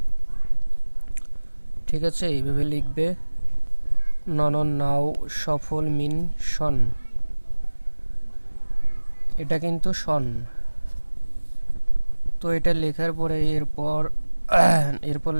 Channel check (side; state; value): both; inverted; correlation -1.00